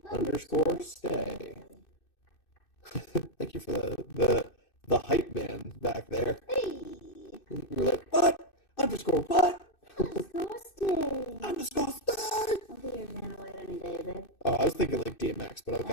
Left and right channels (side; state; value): right; late; 2.6 ms